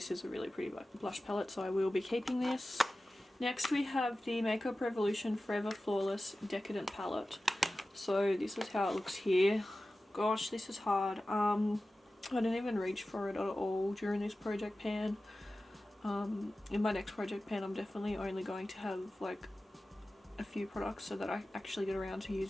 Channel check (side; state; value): both; normal; correlation 0.95